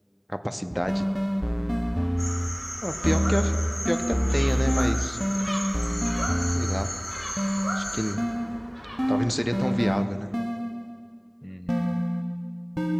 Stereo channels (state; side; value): identical; both; correlation 1.00